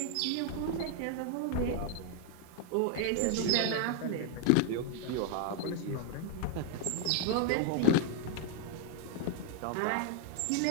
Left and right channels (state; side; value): different; both; correlation 0.00